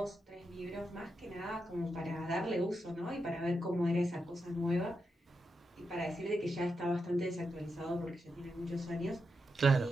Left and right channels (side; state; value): both; normal; correlation 0.86